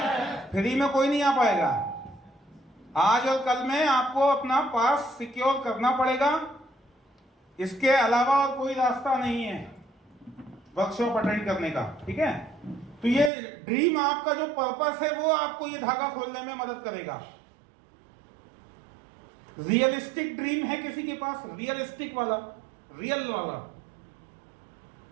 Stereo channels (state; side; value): drops out; left; at 13.3 s